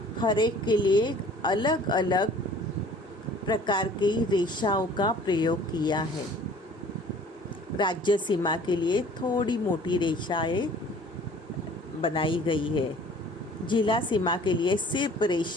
हर एक के लिए अलग अलग प्रकार की रेखाओं का प्रयोग किया है। राज्य सीमा के लिए थोड़ी मोटी रेखा है बनाई गई है। जिला सीमा के लिए सिर्फ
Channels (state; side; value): normal; both; correlation 0.51